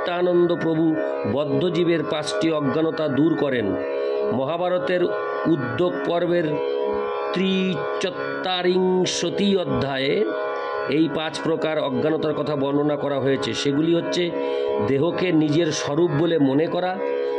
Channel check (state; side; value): identical; both; correlation 1.00